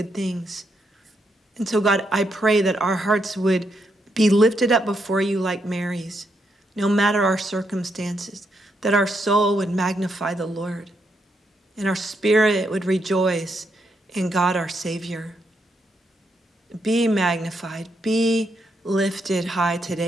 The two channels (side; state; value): both; normal; correlation 0.79